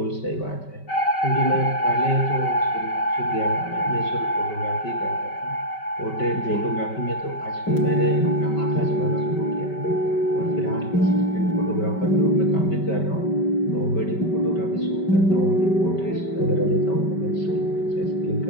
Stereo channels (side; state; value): right; late; 5.2 ms